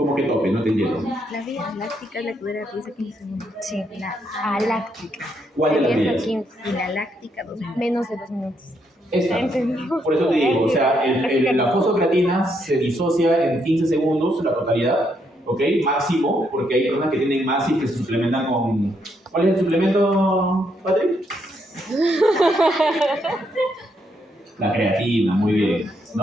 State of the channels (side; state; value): both; normal; correlation 0.76